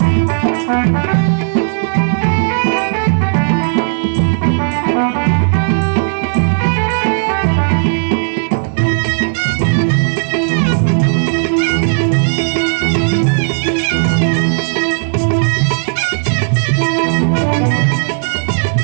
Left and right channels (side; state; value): left; silent; 66 dB below the other